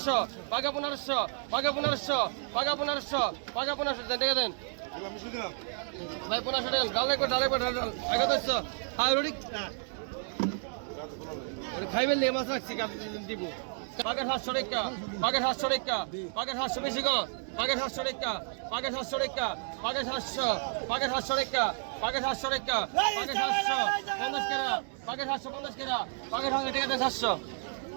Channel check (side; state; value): left; silent; 57 dB below the other